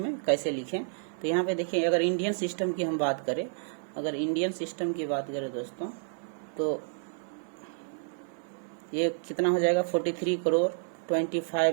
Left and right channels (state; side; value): silent; left; 58 dB below the other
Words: कैसे लिखें। तो यहाँ पे देखिए अगर इंडियन सिस्टम की हम बात करें, दोस्तों तो ये कितना हो जाएगा 43 करोड़